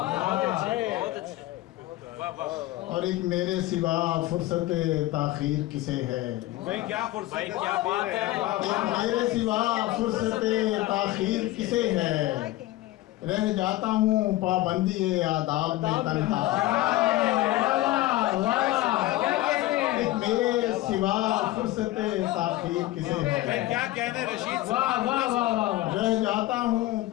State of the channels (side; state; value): right; quieter; 16.8 dB